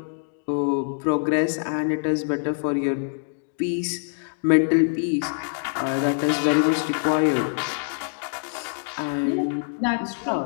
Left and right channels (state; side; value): silent; right; digital silence